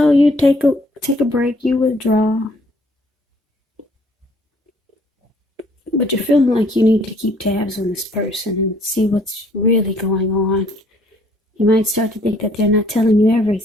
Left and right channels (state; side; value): normal; both; correlation 0.61